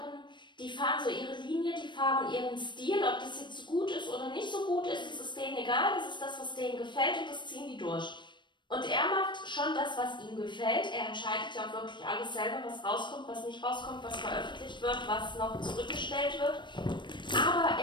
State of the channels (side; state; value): right; late; 0.22 ms